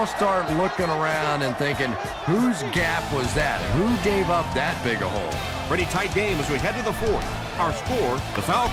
start looking around and thinking, whose gap was that? Who gave up that big a hole? Pretty tight game as we head to the 4th. Our score, the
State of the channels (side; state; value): both; identical; correlation 1.00